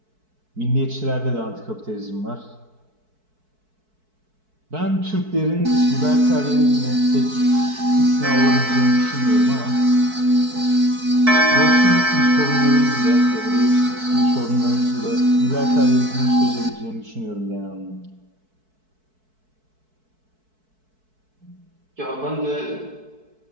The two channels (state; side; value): late; left; 4.6 ms